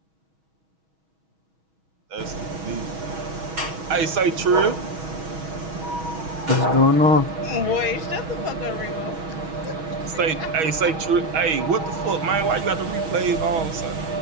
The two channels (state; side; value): late; left; 6.3 ms